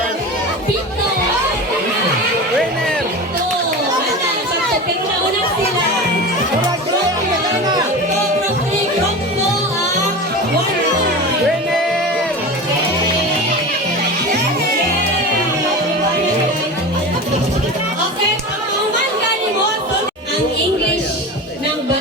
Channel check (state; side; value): normal; both; correlation 0.29